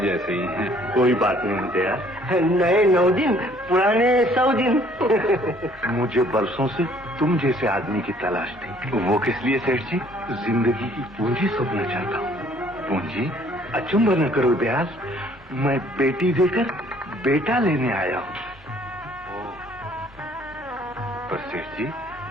ही हैं। कोई बात नहीं दयाल, नए 9 दिन, पुराने 100 दिन। मुझे बरसों से तुम जैसे आदमी की तलाश थी। वो किस लिए सेठ जी? जिंदगी की पूंजी सोचना चाहता हूँ। पूंजी? अचंभा न करो दयाल, मैं बेटी देकर बेटा लेने आया हूँ। पर सेठ जी,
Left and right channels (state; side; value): normal; both; correlation 0.59